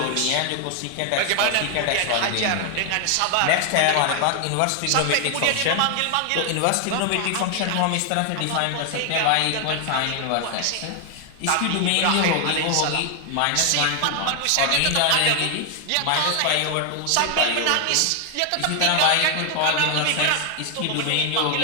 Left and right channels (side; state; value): both; different; correlation 0.00